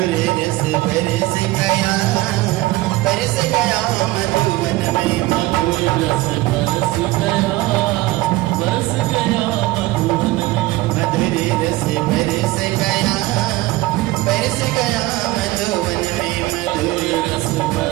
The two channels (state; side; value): quieter; left; 18.6 dB